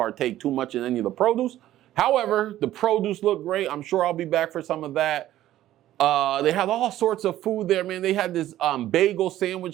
too much in any of the produce. However, the produce looked great. I'm sure I'll be back for some of that. They had all sorts of food there, man. They had this bagel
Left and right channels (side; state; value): left; quieter; 13.6 dB